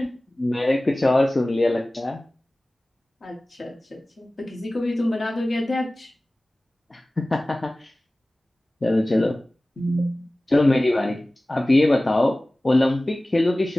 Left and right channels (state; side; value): normal; both; correlation 0.98